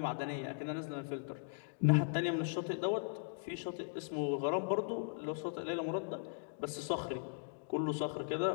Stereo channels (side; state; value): right; silent; digital silence